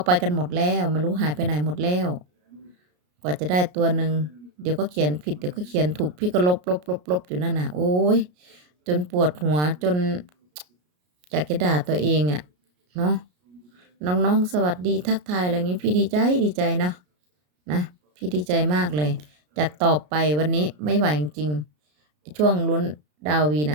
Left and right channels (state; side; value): late; left; 33 ms